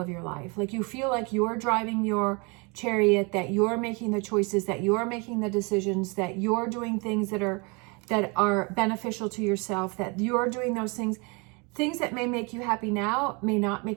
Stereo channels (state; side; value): quieter; left; 30.5 dB